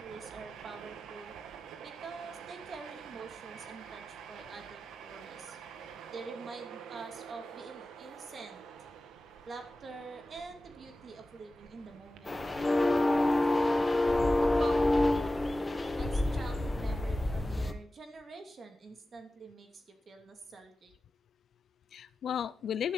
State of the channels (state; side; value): normal; both; correlation 0.95